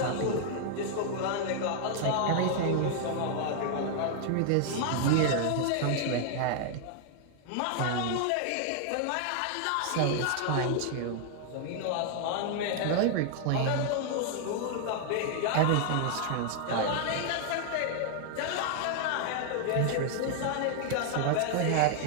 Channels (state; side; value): different; both; correlation 0.00